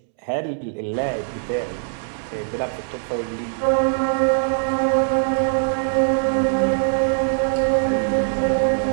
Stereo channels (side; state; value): left; silent; 64 dB below the other